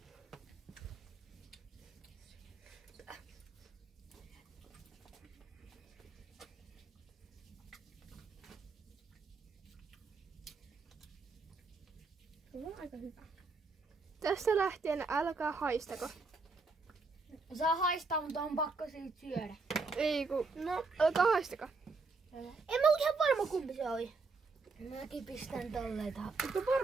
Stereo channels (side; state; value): left; quieter; 4.0 dB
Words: Se on aika hyvä. Tästä lähtien älkää haistako. Saa haistaa, mutta on pakko siitä syödä. Ei ku... No, älkää haistako. En mä ole ihan varma kumpi se oli. Mäkin pistän tolleen tähän. Mutta